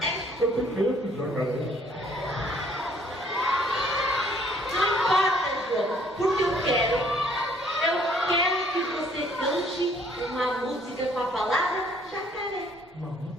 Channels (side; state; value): both; normal; correlation 0.61